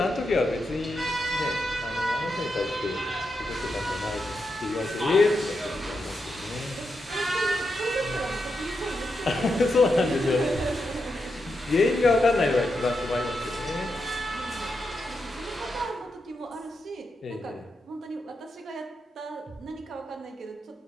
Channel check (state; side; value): normal; both; correlation 0.85